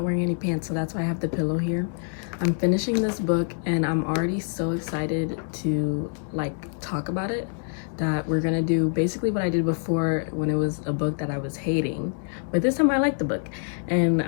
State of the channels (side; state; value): right; silent; digital silence